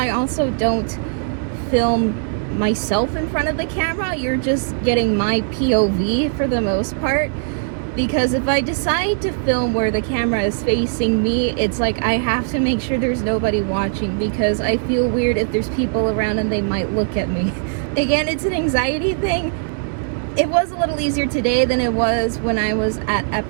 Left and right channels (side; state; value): left; silent; digital silence